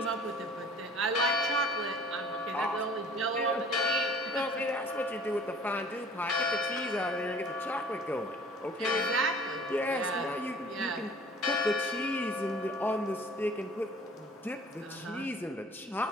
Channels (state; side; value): normal; both; correlation 0.49